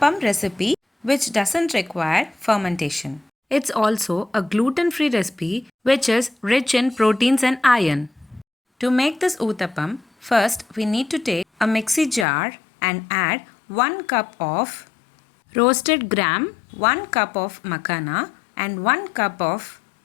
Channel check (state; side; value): drops out; right; at 12.2 s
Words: recipe which doesn't require fermentation. It's also a gluten-free recipe which is rich in proteins and iron. To make this Uthappam, first we need to take a mixie jar and add 1 cup of roasted gram, 1 cup of makhana and 1 cup of